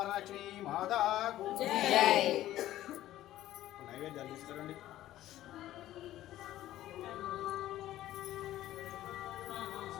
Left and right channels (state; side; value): quieter; right; 14.0 dB